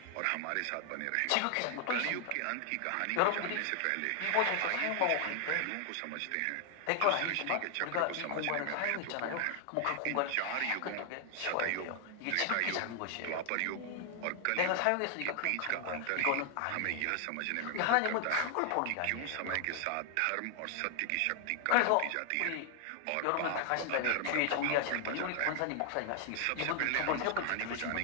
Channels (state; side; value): different; both; correlation 0.00